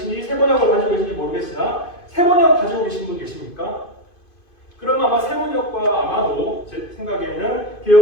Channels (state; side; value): late; right; 2.5 ms